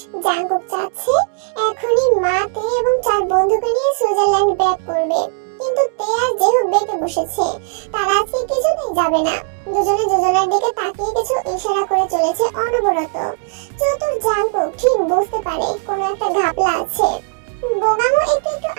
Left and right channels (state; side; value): silent; left; digital silence